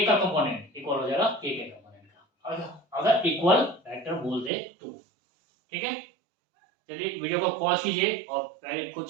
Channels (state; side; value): drops out; left; at 4.5 s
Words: का कंपोनेंट इक्वल हो जाएगा k के कंपोनेंट का। अगर इक्वल वेक्टर बोल दे तो, ठीक है। चलिए वीडियो को पॉज कीजिए और पहले खुद